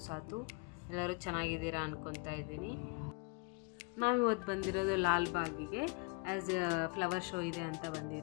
Sathu. ಎಲ್ಲರೂ ಚೆನ್ನಾಗಿದ್ದೀರಾ ಅನ್ಕೊತಾ ಇದ್ದೀನಿ. ನಾವಿವತ್ತು ಬಂದಿರೋದು ಲಾಲ್ಬಾಗಿಗೆ ಆ್ಯಸ್ ಎ ಫ್ಲವರ್ ಶೋ ಇದೆ ಅಂತ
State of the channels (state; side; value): quieter; right; 30.4 dB